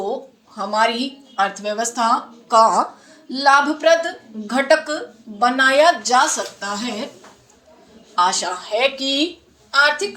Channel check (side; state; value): both; identical; correlation 1.00